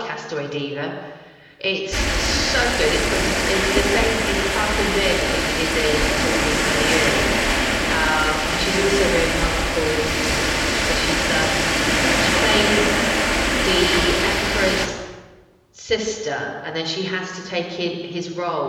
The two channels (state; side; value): identical; both; correlation 1.00